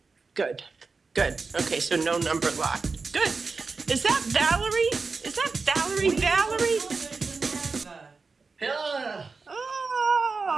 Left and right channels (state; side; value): quieter; left; 4.4 dB